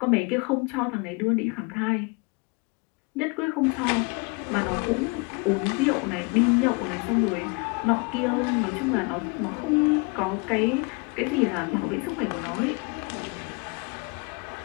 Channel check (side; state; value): right; quieter; 30.7 dB